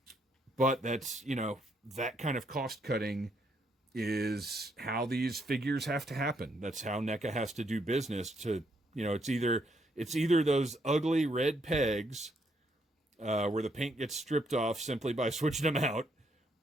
But that's, you know, that kind of cost cutting is how these figures have to happen. That's how NECA has to do business to, you know, it's either those ugly red pegs where the paint gets stripped off simply by switching them out,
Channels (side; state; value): both; normal; correlation 0.73